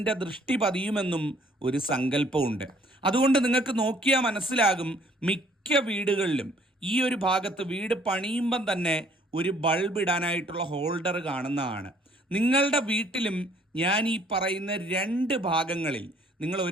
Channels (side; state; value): both; normal; correlation 0.60